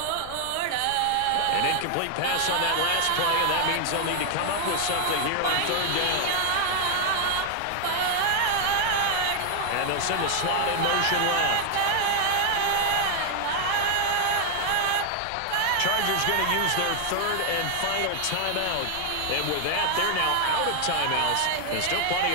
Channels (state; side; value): different; both; correlation 0.00